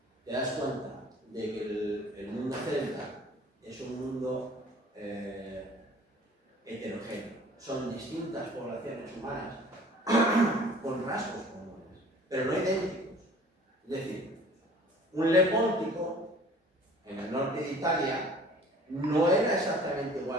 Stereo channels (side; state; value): both; normal; correlation 0.49